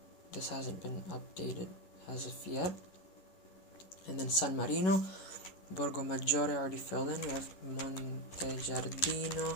This hasn't been updated as of yet. And then San Marino, Borgo Maggiore already filled in. We have Monte Giardino,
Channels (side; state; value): right; late; 11 ms